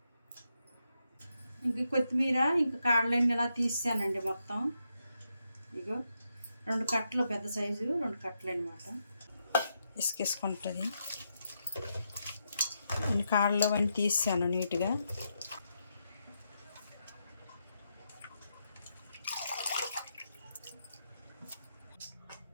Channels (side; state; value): both; inverted; correlation -0.83